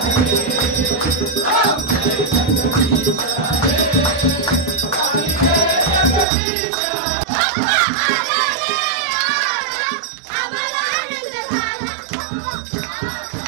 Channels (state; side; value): drops out; left; at 6.2 s